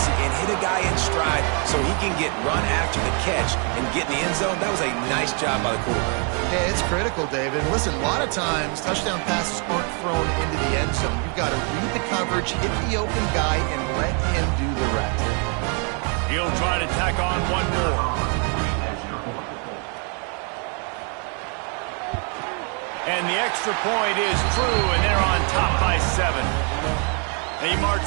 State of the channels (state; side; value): quieter; left; 38.3 dB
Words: and hit a guy in stride so he can get run after the catch and get in the end zone. That was a nice job by the quarterback. Yeah, it's critical, David. And listen, a lot of times touchdown passes aren't thrown into the end zone. You've got to read the coverage, hit the open guy, and let him do the rest. He'll try to tack on one more. And the extra point is true, and they're on top by 7. They march